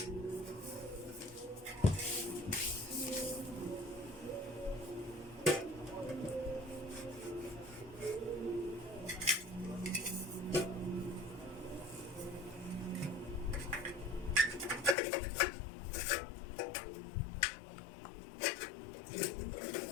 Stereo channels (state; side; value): drops out; right; at 15.0 s